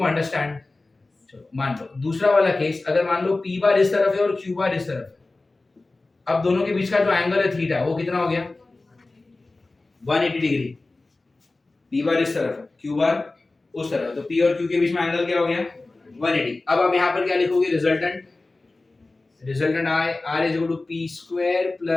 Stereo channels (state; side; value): quieter; right; 3.2 dB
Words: understand. चलो मान लो दूसरा वाला केस, अगर मान लो p बार इस तरफ है और q बार इस तरफ है, अब दोनों के बीच का जो एंगल है थीटा वो कितना हो गया, 180 डिग्री. p बार इस तरफ है, q बार उस तरफ, तो p और q के बीच में एंगल क्या हो गया, 180. अब आप यहाँ पर क्या लिखोगे, resultant, resultant r is equal to p square